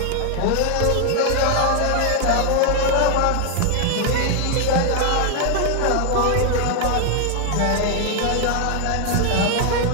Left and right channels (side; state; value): both; different; correlation 0.00